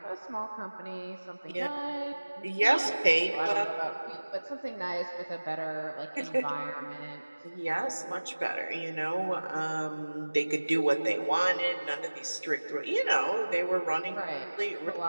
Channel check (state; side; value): inverted; both; correlation -1.00